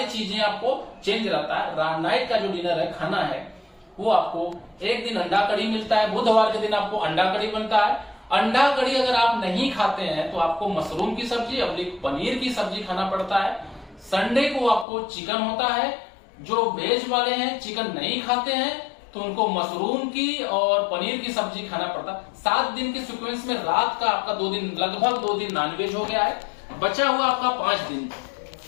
चीजें आपको चेंज रहता है। नाइट का जो डिनर है, खाना है, वो आपको एक दिन अंडा कड़ी मिलता है, बुधवार के दिन आपको अंडा कड़ी बनता है। अंडा कड़ी अगर आप नहीं खाते हैं तो आपको मशरूम की सब्जी और पनीर की सब्जी खाना पड़ता है। संडे को आपको चिकन होता है। जो वेज वाले हैं, चिकन नहीं खाते हैं, तो उनको मशरूम की और पनीर की सब्जी खाना पड़ता है। 7 दिन के सीक्वेंस में रात का आपका 2 दिन, लगभग 2 दिन नॉनवेज हो गया है। बचा हुआ आपका 5 दिन।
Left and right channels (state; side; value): drops out; right; at 14.9 s